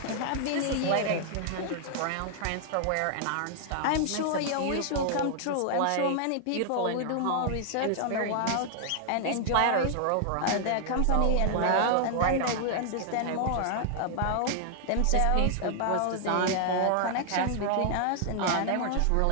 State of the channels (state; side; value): different; both; correlation 0.00